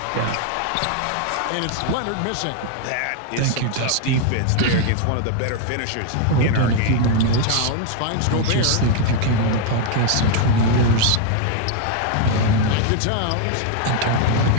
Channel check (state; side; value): different; both; correlation 0.00